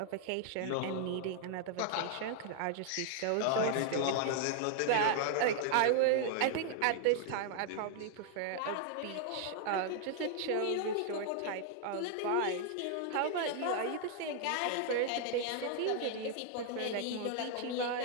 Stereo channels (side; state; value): both; different; correlation -0.01